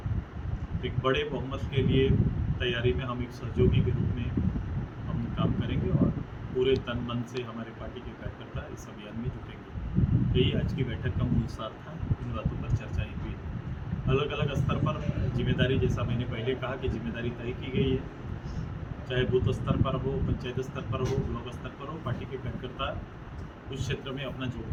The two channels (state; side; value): identical; both; correlation 1.00